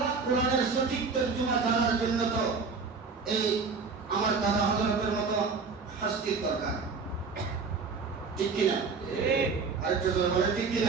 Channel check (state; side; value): quieter; left; 4.8 dB